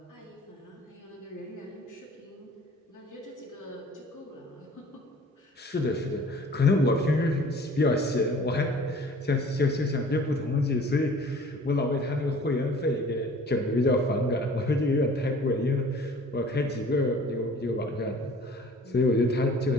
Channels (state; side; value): normal; both; correlation 0.49